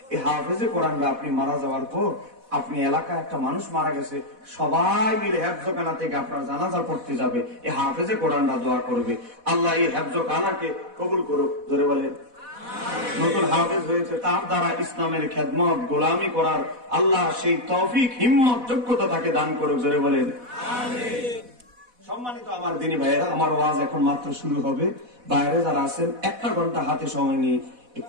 এই হাফেজে কোরআনরা আপনি মারা যাওয়ার পর আপনি এলাকায় একটা মানুষ মারা গেছে, সবাই মিলে হেফজখানা থেকে আপনার জানাজা পড়তে যাবে, এই হাফেজে কোরআনরা দোয়া করবে আল্লাহ এই হেফজখানাকে কবুল করুক। জোরে বলেন। নতুন হাফেজ হয়েছে, তার দ্বারা ইসলামের খেদমত গোলামি করার আল্লাহ সেই তৌফিক হিম্মত যোগ্যতা তাকে দান করুক। জোরে বলেন আমিন। সম্মানিত আমার দিনী ভাইয়েরা, আমার ওয়াজ এখন মাত্র শুরু হবে। বাইরে যারা আছেন 1 ঘন্টা হাতে সময় নিয়ে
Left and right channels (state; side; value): late; left; 4.1 ms